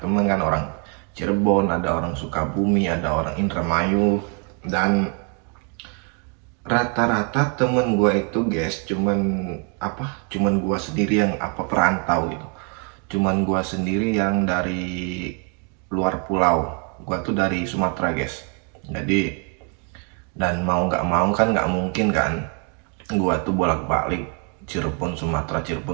kan, orang Cirebon, ada orang Sukabumi, ada orang Indramayu, dan rata-rata temen gue itu guys cuman gue sendiri yang perantau gitu, cuman gue sendiri yang dari luar pulau. Gue tuh dari Sumatera guys, jadi dan mau nggak mau kan nggak mungkin kan gue tuh bolak-balik Cirebon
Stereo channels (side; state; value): left; quieter; 37.6 dB